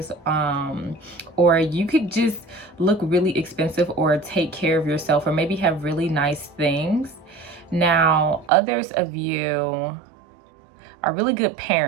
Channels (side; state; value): left; drops out; at 8.5 s